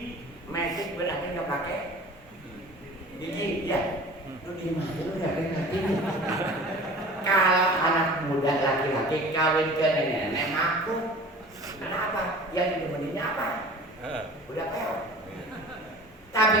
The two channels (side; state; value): both; normal; correlation 0.42